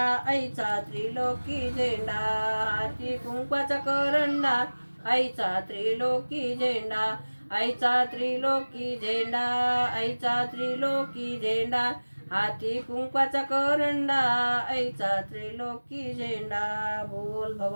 आईचा त्रिलोकी झेंडा, हाती कुंकवाचा करंडा आईचा त्रिलोकी झेंडा, आईचा त्रिलोकी झेंडा आईचा त्रिलोकी झेंडा. हाती कुंकवाचा करंडा आईचा त्रिलोकी झेंडा. बोल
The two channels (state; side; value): inverted; both; correlation -1.00